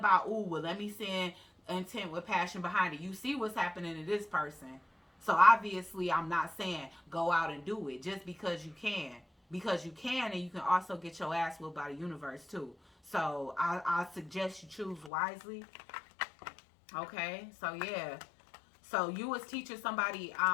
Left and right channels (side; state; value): right; drops out; at 15.1 s